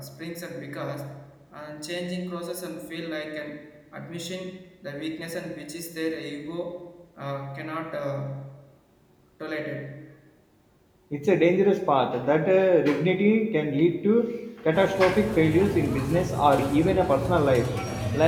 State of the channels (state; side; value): identical; both; correlation 1.00